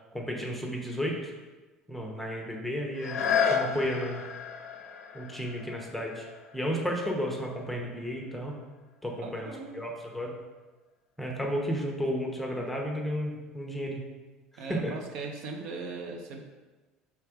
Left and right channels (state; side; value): normal; both; correlation 0.57